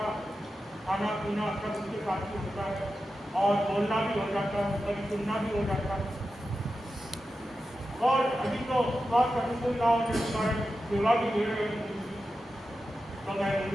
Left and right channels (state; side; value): normal; both; correlation 0.91